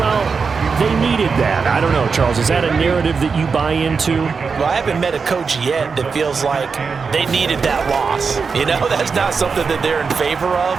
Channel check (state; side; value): quieter; left; 5.2 dB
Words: they needed that. I don't know, Charles. Is that a narrative that you buy into? Well, I haven't met a coach yet that feels like they needed that loss. That's not something that they're in favor